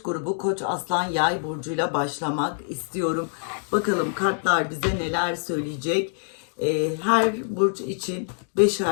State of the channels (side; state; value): right; silent; digital silence